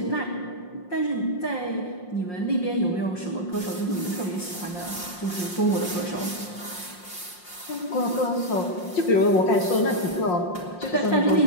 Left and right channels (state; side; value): late; right; 5.6 ms